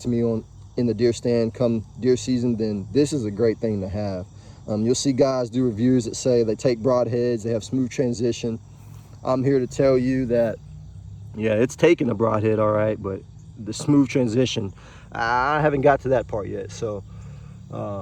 to me on in the deer stand come deer season, then this is a great thing to have. You'll see guys do reviews that say they take broadheads, they have smooth transition. I'm here to tell you that, yeah, it's taking a broadhead all right, but the smooth transition, I haven't got to that part yet. So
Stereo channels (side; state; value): both; identical; correlation 1.00